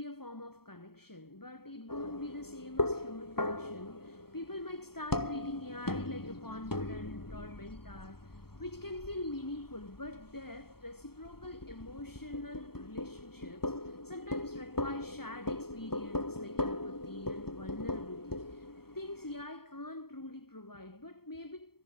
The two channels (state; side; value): late; right; 0.95 ms